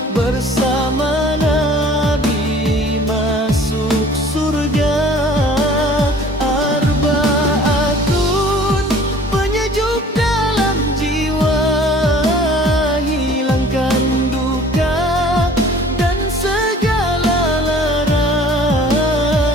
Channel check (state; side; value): normal; both; correlation 0.50